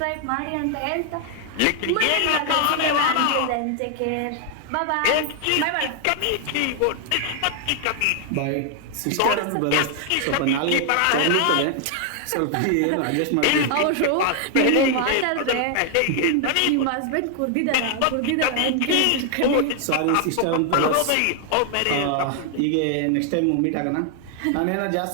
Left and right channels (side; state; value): both; different; correlation 0.00